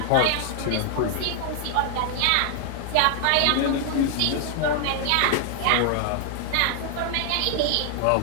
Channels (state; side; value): different; both; correlation 0.00